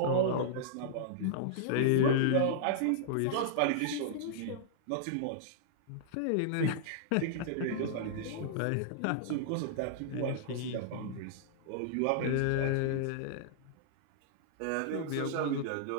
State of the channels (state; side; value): different; both; correlation -0.02